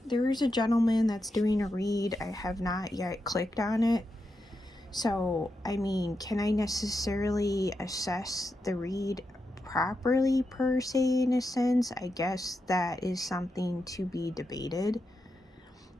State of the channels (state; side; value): normal; both; correlation 0.86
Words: there's a gentleman that's doing a read. I have not yet clicked on it. So, I mean, can I necessarily assess the read properly, per se, in a sense? I guess that is something to be debated.